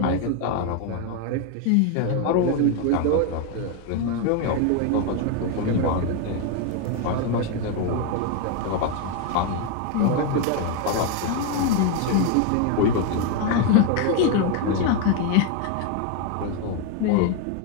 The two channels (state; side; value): different; both; correlation 0.01